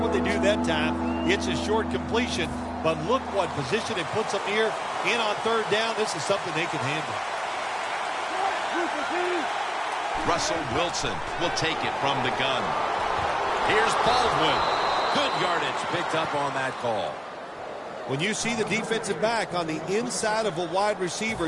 they do that time. It's a short completion, but look what position it puts them here. In on third down, this is something they can handle. Russell Wilson will take it from the gun. Here's Baldwin. Good yardage picked up on that call. When you see the defensive back on the inside of a wide receiver,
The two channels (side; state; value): both; identical; correlation 1.00